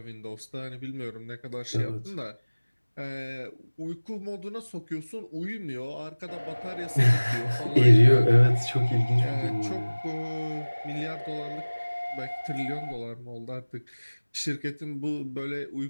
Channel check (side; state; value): both; inverted; correlation -1.00